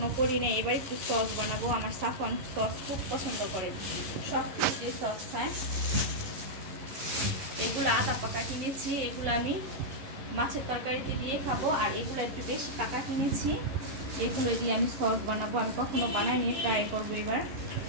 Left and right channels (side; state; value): left; late; 11 ms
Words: করি না, এবার একটু সস বানাবো। আমার সাফন সস খুব পছন্দ করে, সব কিছু সস খায়। এগুলো আদা পাকা কিনেছি, এগুলো আমি মাছের তরকারিতে দিয়ে খাবো। আর এগুলো একটু বেশি পাকা কিনেছি, এগুলো দিয়ে আমি সস বানাবো। আমি কখনো বানাইনি, ট্রাই করবো এবার।